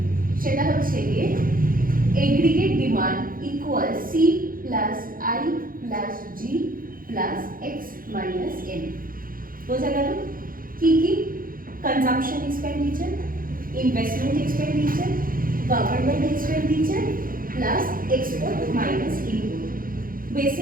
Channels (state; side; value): late; left; 0.41 ms